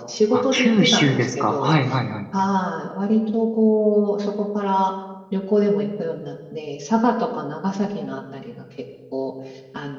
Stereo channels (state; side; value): identical; both; correlation 1.00